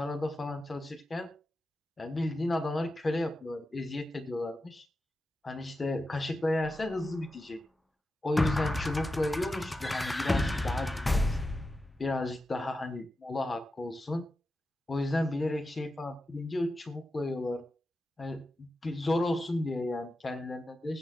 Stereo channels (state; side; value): normal; both; correlation 0.91